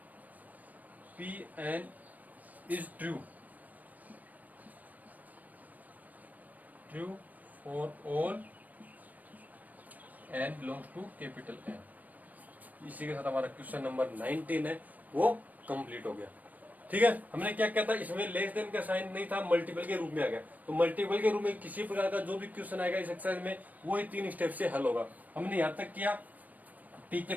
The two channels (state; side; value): late; left; 0.078 ms